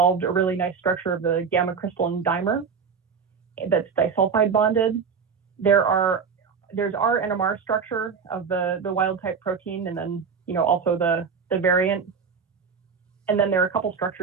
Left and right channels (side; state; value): left; quieter; 6.0 dB